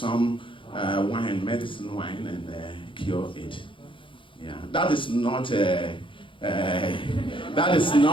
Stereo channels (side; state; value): right; late; 0.25 ms